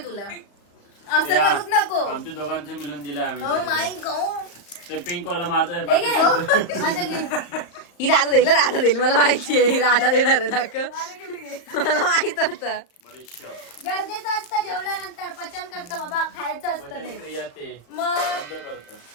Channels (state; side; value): late; right; 35 ms